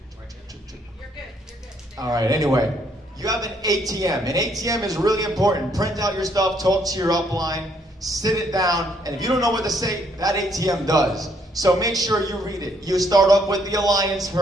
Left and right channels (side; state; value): both; normal; correlation 0.69